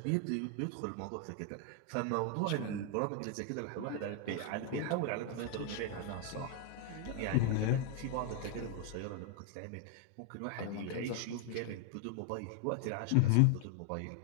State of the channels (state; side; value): different; both; correlation 0.00